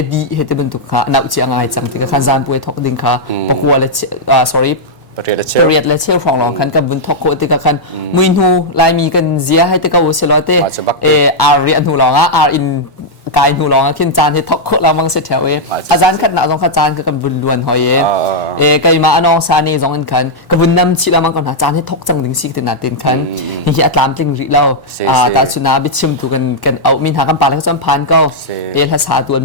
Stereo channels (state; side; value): normal; both; correlation -0.05